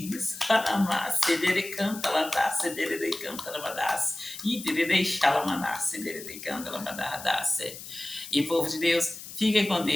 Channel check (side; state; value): left; noise; hiss, 13 dB below the sound